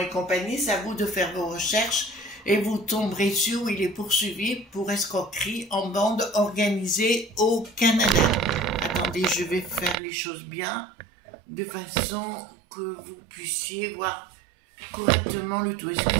compagnie, c'est à vous de faire vos recherches et vous tomberez sur où il est poursuivi pour escroquerie en bande organisée au Canada. Attendez, je vais faire les choses bien de façon que vous puissiez voir correctement le tout.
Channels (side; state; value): left; drops out; at 10.0 s